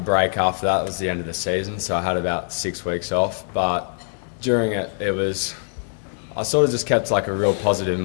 after that. It was the end of the season, so I had about 6 weeks off. But during it, I sort of just kept like a real positive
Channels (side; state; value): right; silent; digital silence